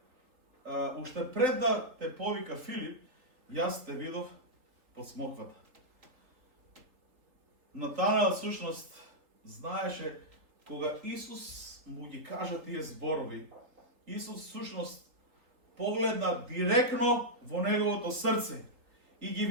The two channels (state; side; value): late; left; 3.8 ms